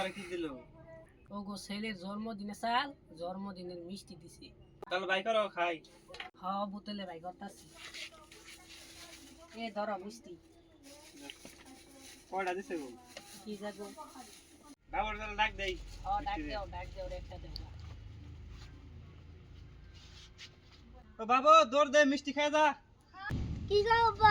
কি দিল? ও গো ছেলের জন্মদিনে চাল, জন্মদিনের মিষ্টি দিছি। তাহলে বাই করো খাই। হ্যাঁ বোতলে ভাই করতাছি। এ ধরো মিষ্টি। কয়টা দিছে গো? কি যাবো? ডাবর তাহলে ডাক দেই। হ্যাঁ ডাক দাও রে একটা দেও। ও বাবু দৌড় দে, মিষ্টি খাই যা। কি গো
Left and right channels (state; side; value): identical; both; correlation 1.00